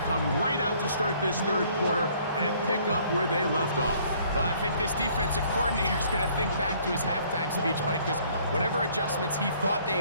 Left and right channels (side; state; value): both; inverted; correlation -0.60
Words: come right out to start this 3rd quarter and pick up where they left off. Well, I think this defensive coordinator is going to think back to his halftime speech, Mike, because whatever adjustments he thought